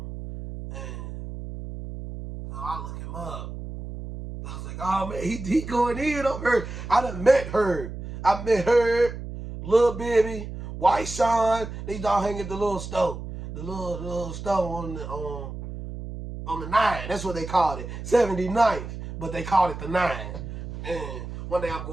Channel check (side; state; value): right; noise; hum, 9 dB below the sound